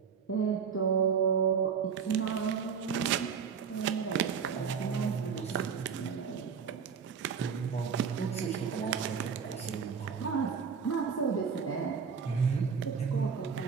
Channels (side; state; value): left; quieter; 6.4 dB